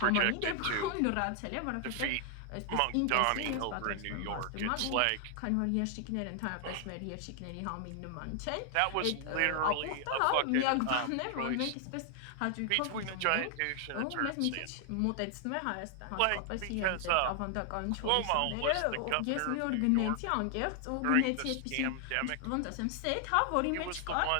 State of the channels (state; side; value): different; both; correlation 0.00